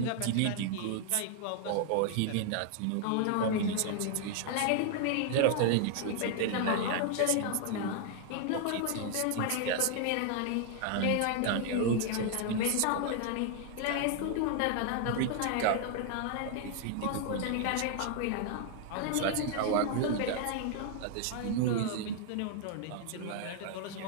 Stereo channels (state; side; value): different; both; correlation 0.00